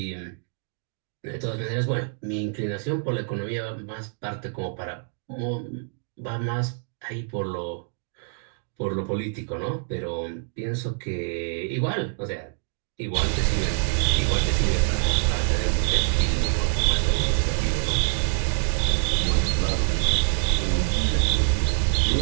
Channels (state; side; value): silent; left; 61 dB below the other